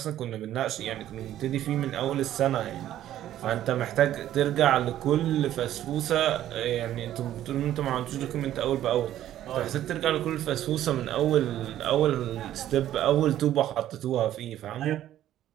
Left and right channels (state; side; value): quieter; left; 12.4 dB